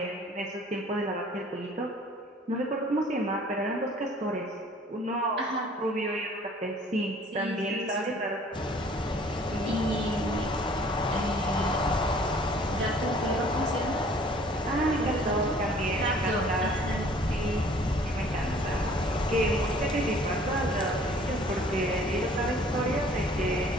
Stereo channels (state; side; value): normal; both; correlation 0.54